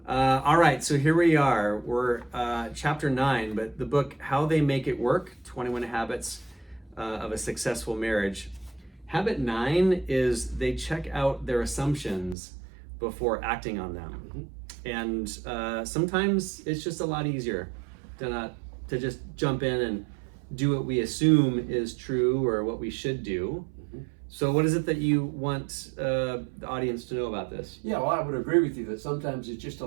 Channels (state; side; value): drops out; left; at 12.4 s